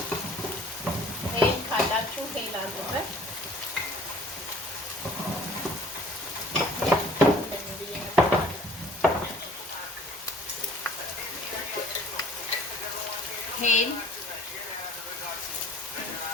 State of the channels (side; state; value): both; normal; correlation 0.52